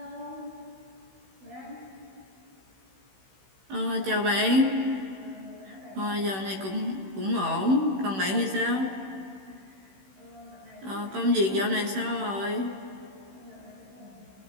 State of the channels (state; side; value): late; left; 16 ms